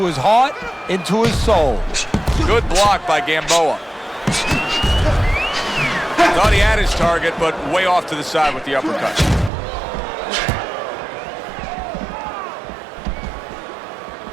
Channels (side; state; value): left; drops out; at 9.5 s